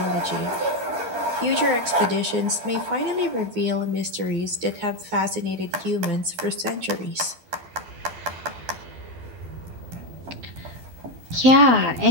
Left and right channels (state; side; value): late; left; 12 ms